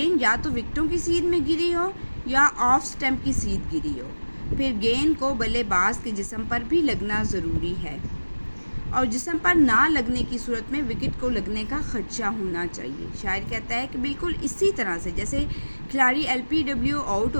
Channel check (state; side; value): inverted; both; correlation -1.00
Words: یا تو وکٹوں کی سیدھ میں گری ہو یا آف سٹمپ کی سیدھ گری ہو، پھر گیند کو بلے باز کے جسم پر بھی لگنا ضروری ہے، اور جسم پر نہ لگنے کی صورت میں وکٹ کو لگنے کا خدشہ ہونا چاہیے۔ شاعر کہتا ہے کہ بالکل اسی طرح سے جیسے کھلاڑی LBW آؤٹ